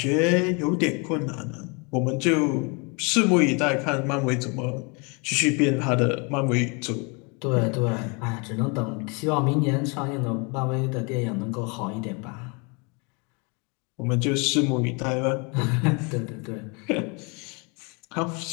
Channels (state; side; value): quieter; right; 31.8 dB